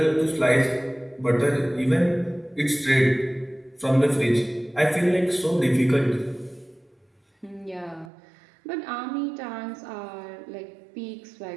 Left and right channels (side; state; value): left; drops out; at 8.1 s